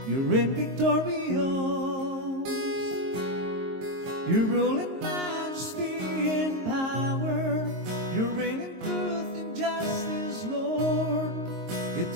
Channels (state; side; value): late; left; 22 ms